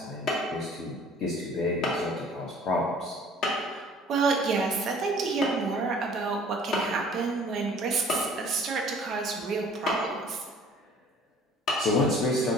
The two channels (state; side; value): normal; both; correlation 0.51